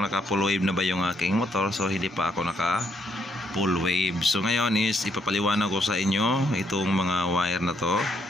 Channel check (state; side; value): normal; both; correlation 0.74